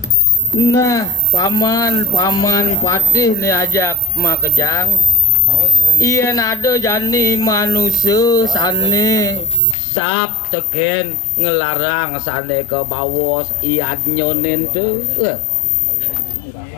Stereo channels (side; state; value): right; drops out; at 9.8 s